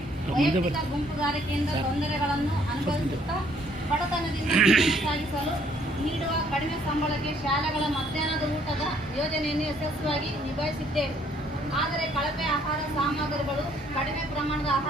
ವೈಯಕ್ತಿಕ ಗುಂಪುಗಾರಿಕೆಯಿಂದ ತೊಂದರೆಗಳನ್ನು ಅನುಭವಿಸುತ್ತಾ ಬಡತನದಿಂದ ಜೀವನ ಸಾಗಿಸಲು ನೀಡುವ ಕಡಿಮೆ ಸಂಬಳಕ್ಕೆ ಶಾಲೆಗಳ ಮಧ್ಯಾಹ್ನದ ಊಟದ ಯೋಜನೆಯನ್ನು ಯಶಸ್ವಿಯಾಗಿ ನಿಭಾಯಿಸಿದ್ದೇವೆ. ಆದರೆ ಕಳಪೆ ಆಹಾರ ಸಾಮಗ್ರಿಗಳು, ಕಡಿಮೆ ಪ್ರಮಾಣದ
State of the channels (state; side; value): normal; both; correlation 0.64